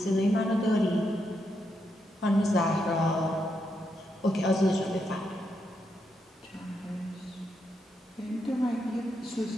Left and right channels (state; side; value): normal; both; correlation 0.81